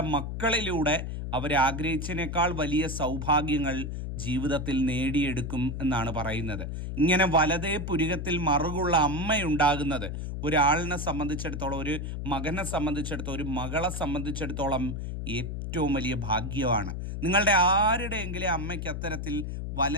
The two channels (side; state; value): left; noise; hum, 5 dB below the sound